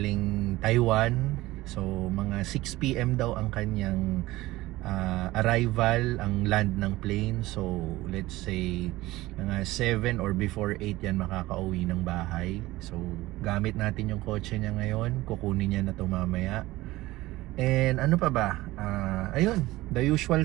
Taiwan. So, mga 6 PM daw ang kanyang arrival, ang land ng plane. So, let's say mga 7 or before 8 yan makakauwi ng bahay. So, gamit natin yung kotse niya ngayon. Kukunin niya na ito mamaya. And ano pa ba? Ayun, the usual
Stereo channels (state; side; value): quieter; left; 18.1 dB